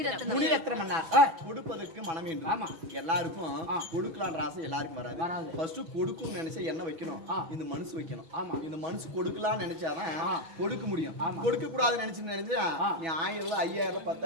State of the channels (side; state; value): left; late; 6.2 ms